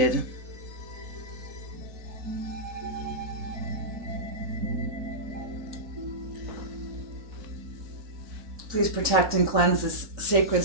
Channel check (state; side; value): late; left; 3.9 ms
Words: Please protect and cleanse this sacred